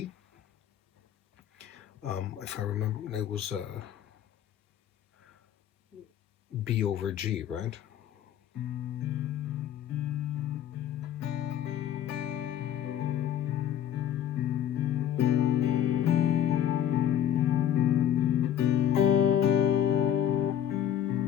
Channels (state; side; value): quieter; right; 10.4 dB